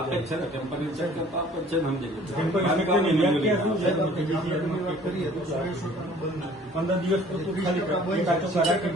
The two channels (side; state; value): both; normal; correlation 0.53